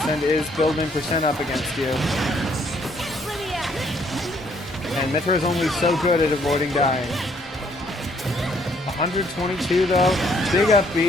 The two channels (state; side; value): normal; both; correlation 0.67